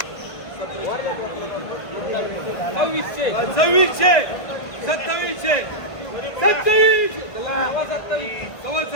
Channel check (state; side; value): late; right; 1.5 ms